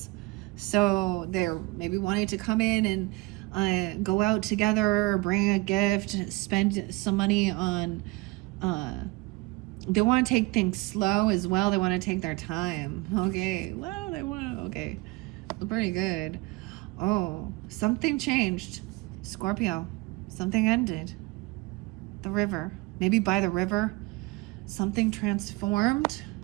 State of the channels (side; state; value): left; quieter; 22.3 dB